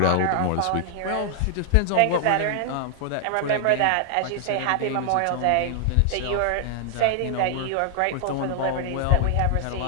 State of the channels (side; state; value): both; different; correlation 0.00